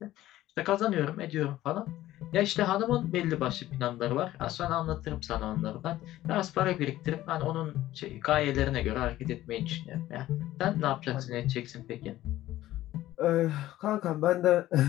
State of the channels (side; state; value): right; quieter; 14.8 dB